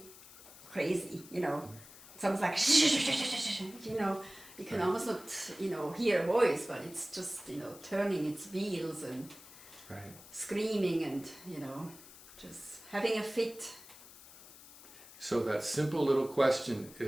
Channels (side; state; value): left; noise; hiss, 19 dB below the sound